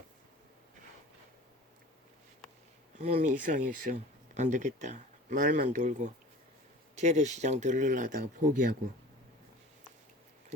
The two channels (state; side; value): normal; both; correlation 0.41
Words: 몸이 이상했어. 안 되겠다. 말만 돌고 재래시장 들르려다가 포기하고